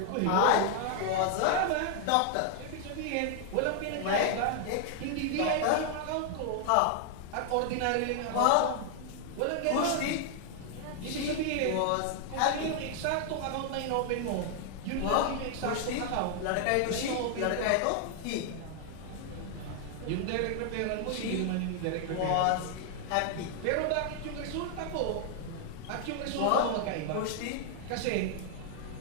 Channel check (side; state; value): both; different; correlation 0.00